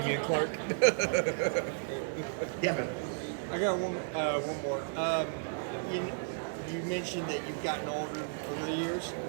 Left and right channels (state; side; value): silent; left; digital silence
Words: Clark. Yeah, man. I got one more. You mentioned that you've gotten older over the years,